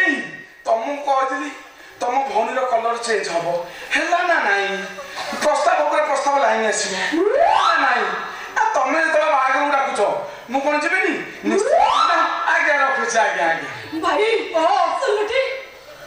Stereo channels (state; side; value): identical; both; correlation 1.00